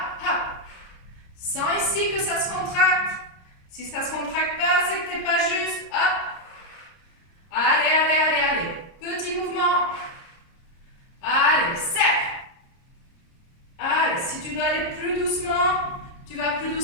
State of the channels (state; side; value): late; right; 29 ms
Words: hop. Sens ici que ça se contracte. Si ça ne se contracte pas, c'est que tu n'es pas juste. Hop. Allez, allez, allez, allez. Petit mouvement. Allez, serre. Allez, si tu dois aller plus doucement, tu vas plus